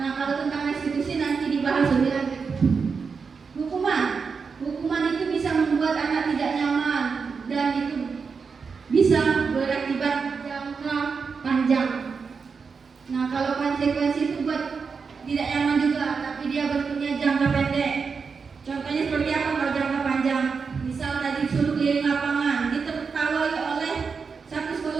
kalau tentang restitusi nanti dibahas lebih lanjut. Hukuman itu bisa membuat anak tidak nyaman dan itu bisa berakibat jangka panjang. Nah, kalau konsekuensi itu buat tidak nyaman juga, tapi dia bentuknya jangka pendek. Contohnya seperti apa kalau jangka panjang? Misal tadi disuruh keliling lapangan, ditertawai oleh satu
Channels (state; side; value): quieter; left; 5.4 dB